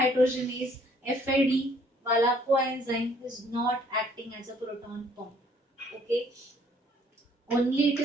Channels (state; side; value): normal; both; correlation 0.61